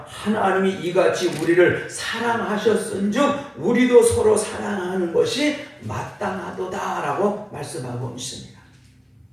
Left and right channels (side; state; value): both; identical; correlation 1.00